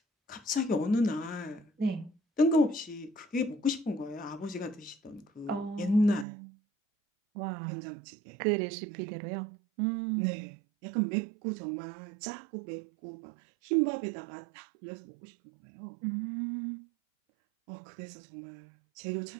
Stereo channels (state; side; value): drops out; left; at 6.2 s